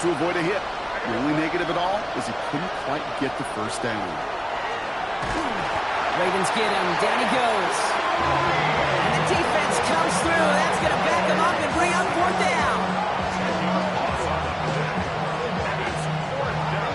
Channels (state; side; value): identical; both; correlation 1.00